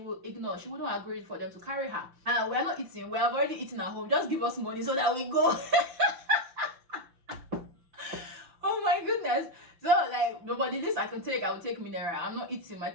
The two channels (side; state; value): left; late; 5.9 ms